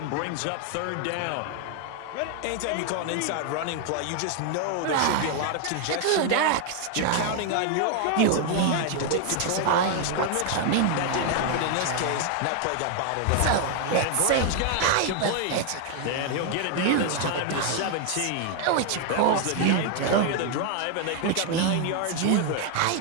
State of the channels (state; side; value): different; both; correlation 0.00